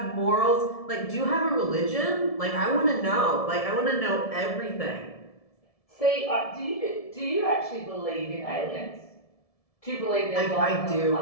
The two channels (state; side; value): late; right; 1.7 ms